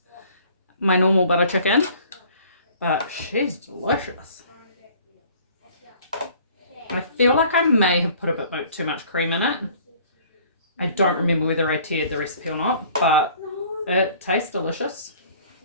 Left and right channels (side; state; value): both; inverted; correlation -0.53